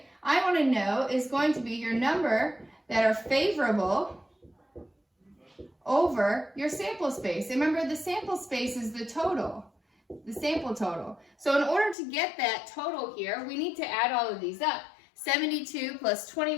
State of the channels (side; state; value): right; drops out; at 12.0 s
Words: I want to know is going to be your number that are favorable over your sample space. Remember, the sample space is the total, the sample total. So in order to get that total here, we need to add all of these up. 72 plus